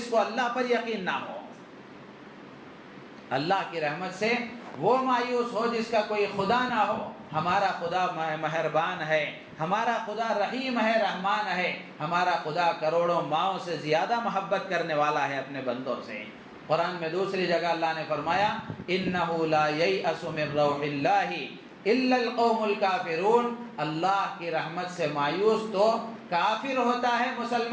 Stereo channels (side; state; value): both; identical; correlation 1.00